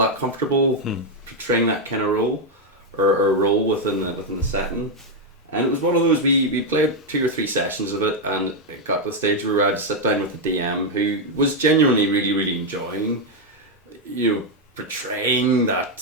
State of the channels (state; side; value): normal; both; correlation 0.02